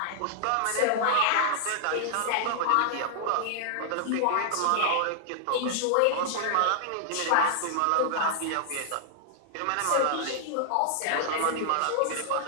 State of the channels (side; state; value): both; different; correlation -0.01